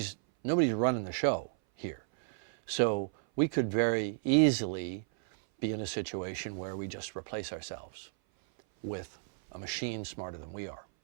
running the show here. So we could very easily be in a situation where we just replace ourselves with a machine smarter than we are.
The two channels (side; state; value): left; silent; 56 dB below the other